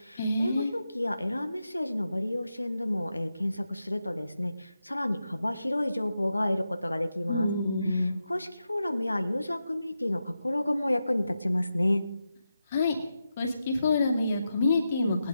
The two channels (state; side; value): inverted; both; correlation -0.88